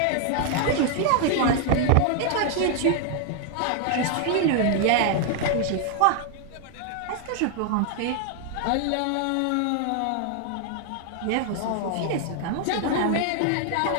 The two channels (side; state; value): both; different; correlation 0.00